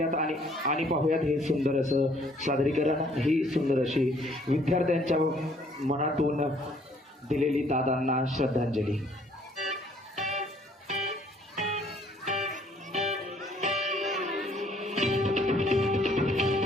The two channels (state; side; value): normal; both; correlation 0.62